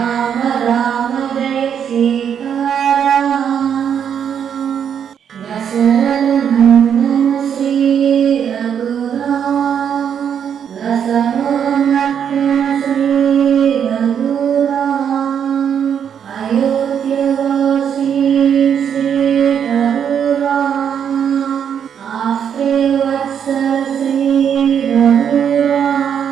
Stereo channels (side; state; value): left; quieter; 8.2 dB